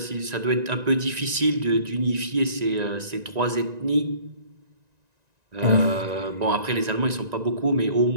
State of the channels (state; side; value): late; left; 1.9 ms